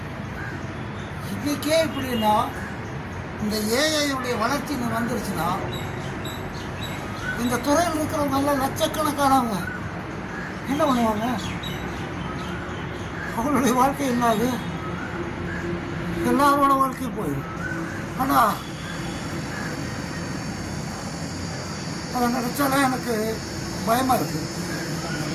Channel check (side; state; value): both; identical; correlation 1.00